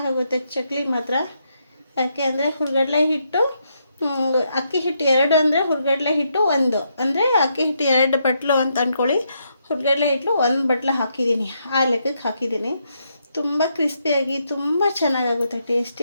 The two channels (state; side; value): inverted; both; correlation -0.78